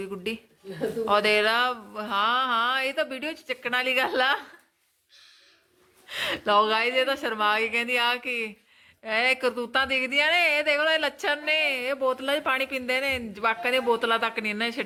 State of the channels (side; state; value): both; identical; correlation 1.00